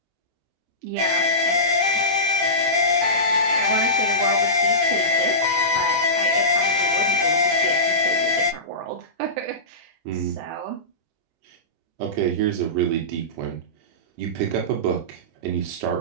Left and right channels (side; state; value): left; late; 23 ms